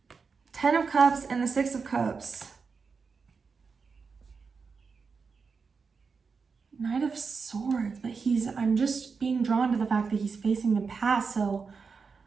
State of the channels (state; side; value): quieter; left; 5.2 dB